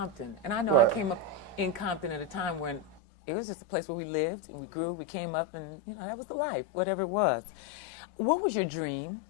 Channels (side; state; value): right; drops out; at 3.0 s